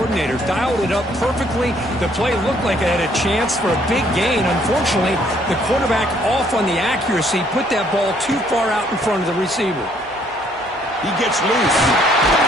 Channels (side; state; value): both; normal; correlation 0.65